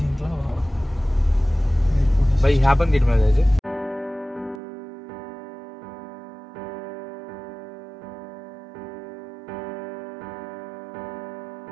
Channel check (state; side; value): drops out; left; at 4.6 s